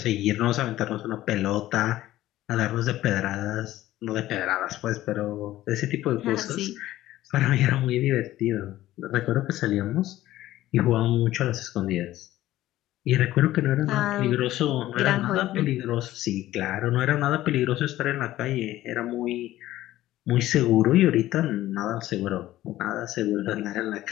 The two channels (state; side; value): quieter; right; 15.0 dB